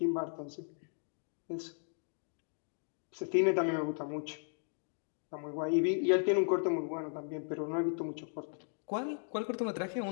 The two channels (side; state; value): right; silent; digital silence